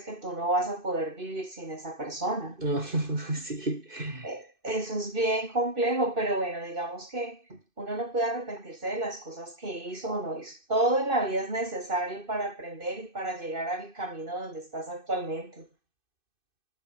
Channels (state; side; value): late; left; 2.5 ms